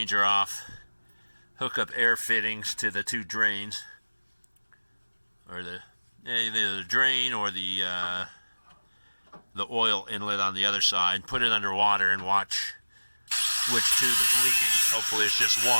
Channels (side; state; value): both; inverted; correlation -1.00